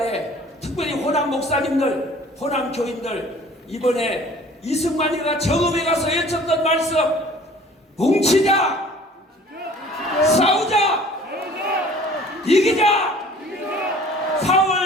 특별히 호남 목사님들, 호남 교인들, 이번에 이승만이가 정읍에 가서 외쳤던 말씀, 뭉치자, 싸우자, 이기자.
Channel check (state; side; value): normal; both; correlation 0.50